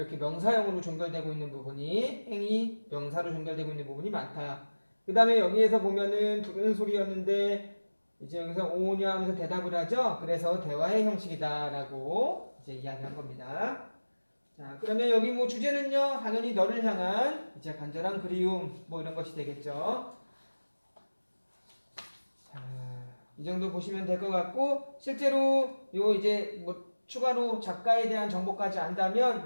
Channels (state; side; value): inverted; both; correlation -1.00